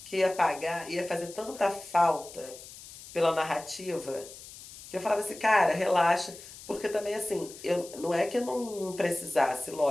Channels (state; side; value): noise; left; hiss, 16 dB below the sound